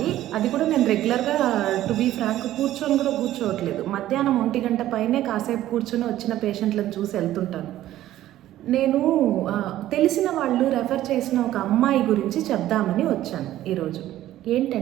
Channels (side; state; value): left; quieter; 13.7 dB